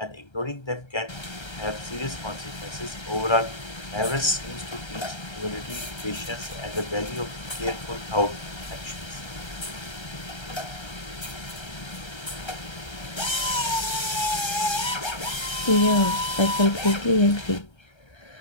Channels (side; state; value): right; late; 1.3 ms